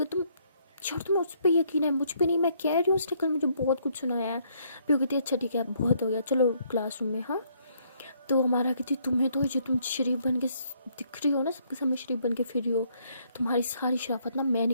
तुम छोड़, तुम्हें उस पर यकीन है मुझ पर नहीं, मैं कह रही हूँ उसने कल मुझे बहुत कुछ सुनाया है। पीहू कहती है अच्छा ठीक है बहुत हो गया, चलो क्लासरूम में। हाँ, तो हमारा कहती तुम्हें तो जो तुम शरीफ बन के दिख रही हो ना, सबके सामने शरीफ बन के फिर रही हो, तुम्हारी सारी शराफत ना मैं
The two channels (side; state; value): both; inverted; correlation -0.69